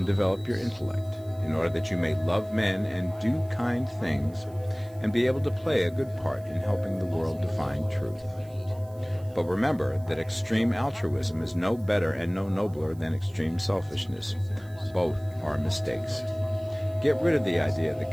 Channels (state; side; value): noise; right; hiss, 27 dB below the sound